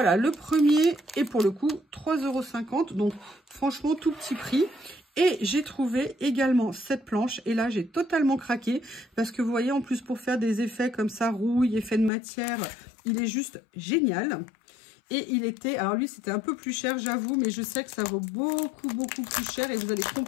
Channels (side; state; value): right; drops out; at 12.1 s